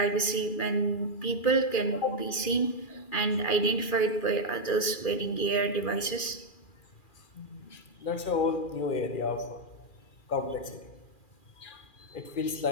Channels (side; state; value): right; late; 2.4 ms